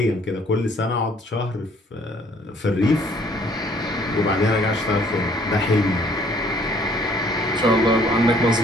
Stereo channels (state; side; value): normal; both; correlation 0.60